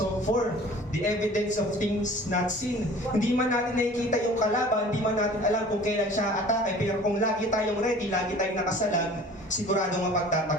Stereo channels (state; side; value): normal; both; correlation 0.46